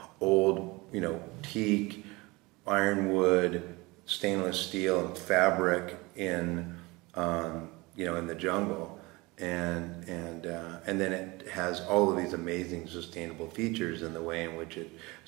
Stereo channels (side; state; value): left; quieter; 23.5 dB